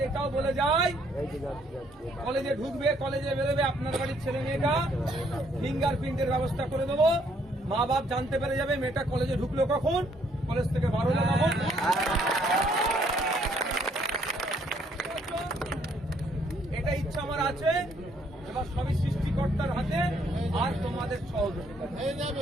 এটাও বলে যায়, কলেজে ঢুকবে, কলেজে বেরোবে, আপনার বাড়ির ছেলে মেয়েটা ফিঙ্গারপ্রিন্টের ব্যবস্থা করে দেবো। মা বাপ জানতে পেরে যাবে মেয়েটা কলেজে ঢুকলো কখন, কলেজ থেকে বার হলো কখন। এটা ইচ্ছা আমার আছে, এবার সবই সৃষ্টিকর্তার হাতে আর তোমাদের সহযোগিতা।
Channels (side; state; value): both; normal; correlation 0.67